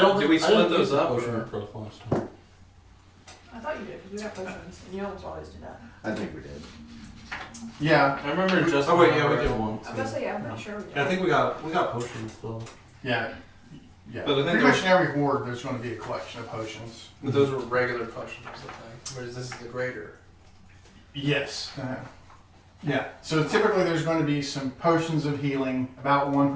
Did we I didn't split those use the up, Potion or- of growth last time. I thought you did, because we got potions, and you almost always do that. I think we did. Yeah. I remember just. Oh wait, yeah, we did one. I was gonna say, yeah, I'm pretty sure we did. Yeah, I think we got potions still. Yeah. Yeah. But I think Pretty there's- much in every ward, there's going to be a collection of potions. But those were regular potions, I think. Whereas this is the greater. Yes. Yeah. So typically there's going to be some potions of healing, about 1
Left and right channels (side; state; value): both; identical; correlation 1.00